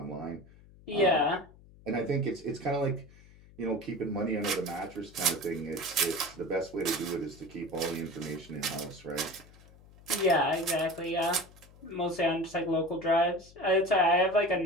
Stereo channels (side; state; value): left; noise; hum, 23 dB below the sound